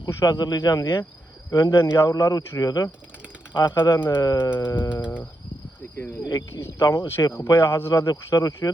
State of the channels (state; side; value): normal; both; correlation 0.84